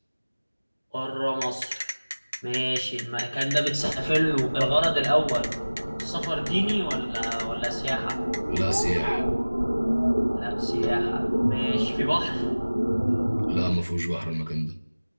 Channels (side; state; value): both; inverted; correlation -1.00